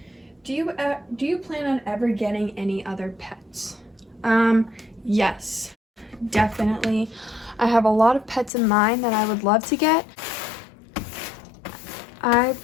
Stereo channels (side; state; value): right; drops out; at 8.5 s